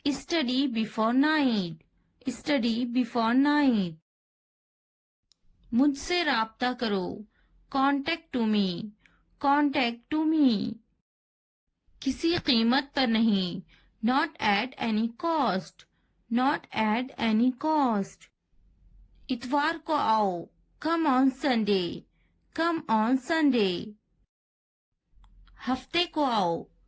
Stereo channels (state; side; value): identical; both; correlation 1.00